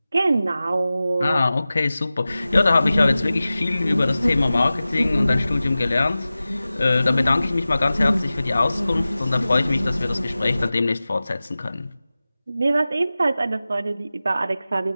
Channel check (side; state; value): both; inverted; correlation -0.96